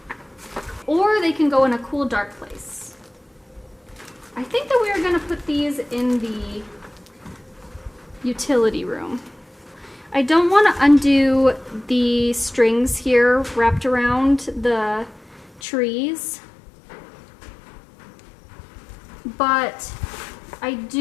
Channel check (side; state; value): right; drops out; at 15.6 s